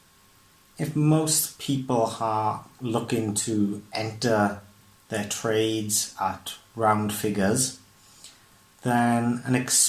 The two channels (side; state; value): both; identical; correlation 1.00